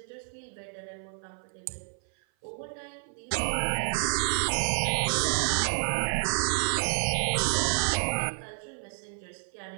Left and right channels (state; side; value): silent; left; 55 dB below the other